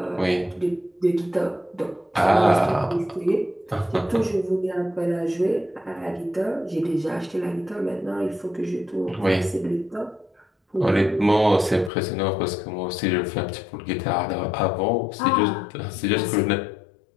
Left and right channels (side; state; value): right; drops out; at 11.9 s